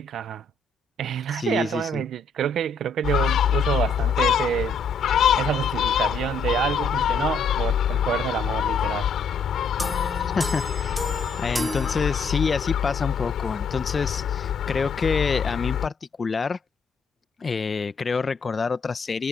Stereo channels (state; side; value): quieter; right; 3.8 dB